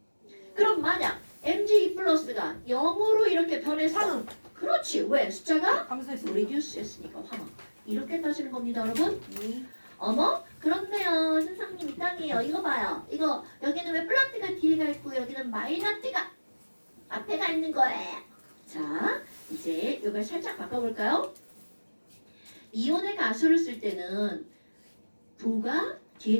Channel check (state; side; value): inverted; both; correlation -1.00